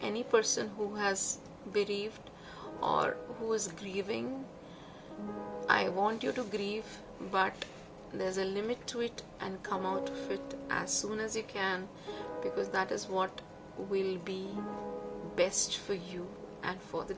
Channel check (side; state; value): both; identical; correlation 1.00